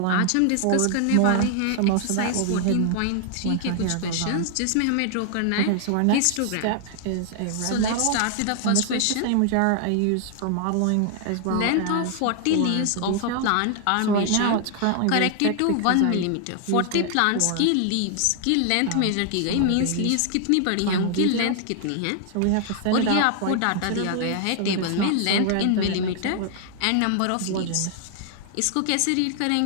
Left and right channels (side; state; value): both; different; correlation 0.00